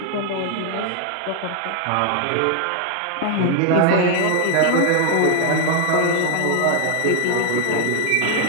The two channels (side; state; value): both; different; correlation 0.00